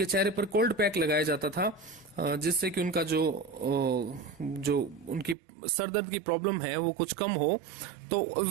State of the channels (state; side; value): drops out; left; at 5.4 s